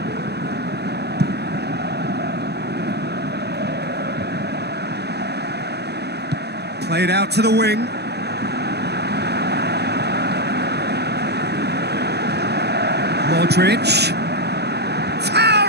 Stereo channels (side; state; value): left; late; 0.48 ms